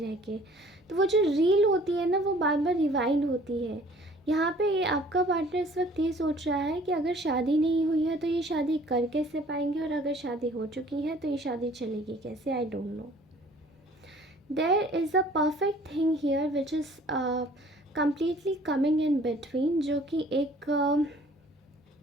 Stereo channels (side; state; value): both; normal; correlation 0.53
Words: के। तो वो जो रील होती है ना, वो बार बार रिवाइंड होती है। यहाँ पे ये आपका पार्टनर इस वक्त ये सोच रहा है कि अगर शादी नहीं हुई है तो ये शादी कर कैसे पाएंगे, और अगर शादी हो चुकी है तो ये शादी चलेगी कैसे, I don't know. There is a perfect thing here which is completely coming in between, जो कि एक